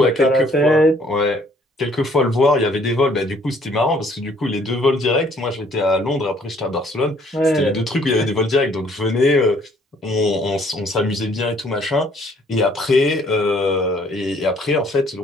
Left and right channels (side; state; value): both; normal; correlation 0.62